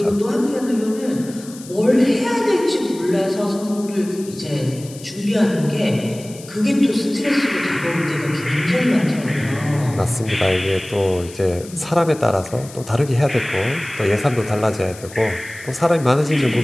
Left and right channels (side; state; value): left; noise; hiss, 18 dB below the sound